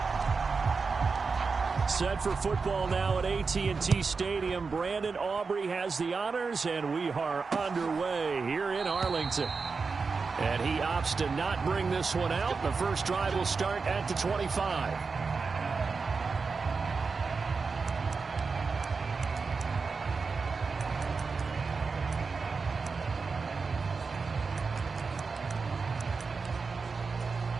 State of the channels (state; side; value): quieter; left; 4.7 dB